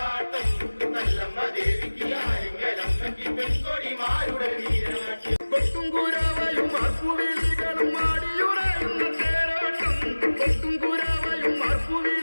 നല്ലമ്മ ദേവിക്ക് ആരെങ്കിലമ്മയ്ക്ക് പെൺകൊടിമാരുടെ നീരാട്ടി കൊട്ടും കുരാവയും മാർപ്പുവിളികളും ആടിയുറയുന്ന തേരോട്ടം കൊട്ടും കുരാവയും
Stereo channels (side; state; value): both; inverted; correlation -1.00